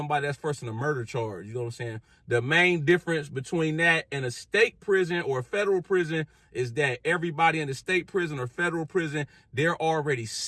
that's first in a murder charge. You know what I'm saying? The main difference between that and a state prison or a federal prison is that everybody in the state prison or federal prison, they're already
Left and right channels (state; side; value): identical; both; correlation 1.00